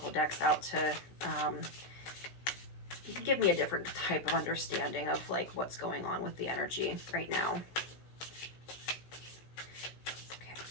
decks out to give me a different type of understanding of like what's going on with the energy right now. Okay.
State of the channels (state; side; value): late; right; 16 ms